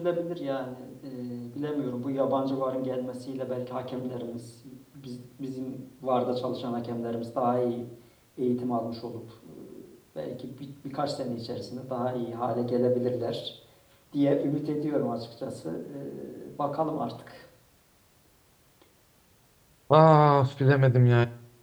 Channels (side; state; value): both; identical; correlation 1.00